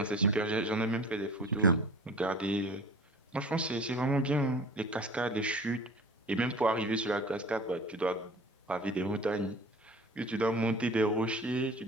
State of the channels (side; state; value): both; normal; correlation 0.42